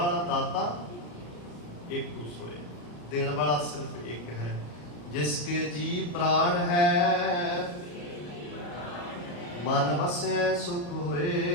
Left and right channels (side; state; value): right; late; 34 ms